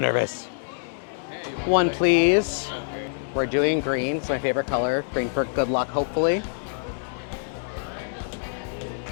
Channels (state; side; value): silent; right; 61 dB below the other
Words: One, please. We're doing green, it's my favorite color. Green for good luck, hopefully.